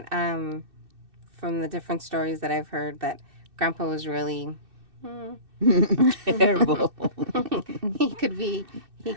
from the different stories that I've heard that Grandpa was really Terrible. he could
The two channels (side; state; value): left; late; 2.6 ms